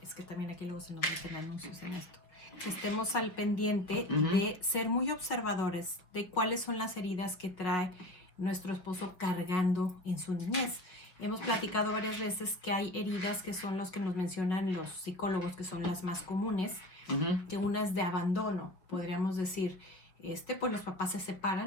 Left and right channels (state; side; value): late; right; 5.4 ms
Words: es que también aquí luego se nos meten anuncios en esto, que estemos al pendiente de ser muy observadores de cuáles son las heridas que trae nuestro esposo cargando en su niñez. Hemos platicado varias veces que hay heridas que son los que nos mencionan los psicólogos, que son las más comunes, que una es de abandono, podríamos decir, pues los papás se